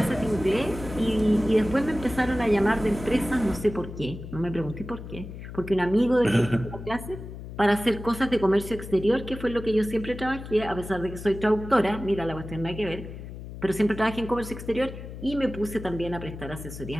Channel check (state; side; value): noise; left; hum, 11 dB below the sound